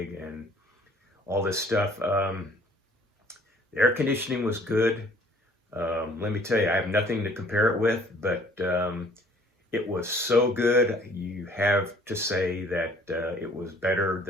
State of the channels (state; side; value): normal; both; correlation 0.56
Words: and all this stuff. The air conditioning was good. Let me tell you, I have nothing to compare it with, but it was so good. You have to say that it was better